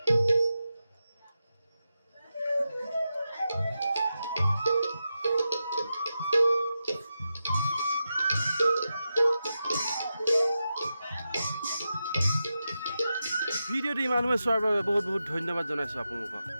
ভিডিঅ'টো ইমানসময় চোৱাৰ বাবে বহুত বহুত ধন্যবাদ জনাইছোঁ আপোনালোকক।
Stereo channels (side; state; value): both; inverted; correlation -0.90